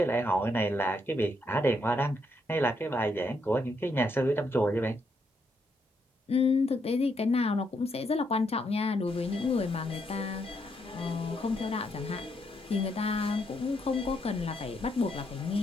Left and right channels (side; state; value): both; normal; correlation 0.77